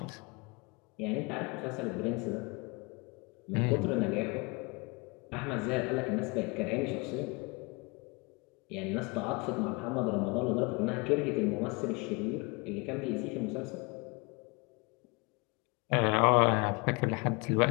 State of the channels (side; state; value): right; quieter; 28.5 dB